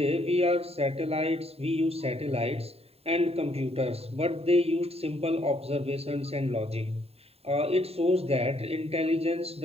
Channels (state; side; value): late; left; 0.29 ms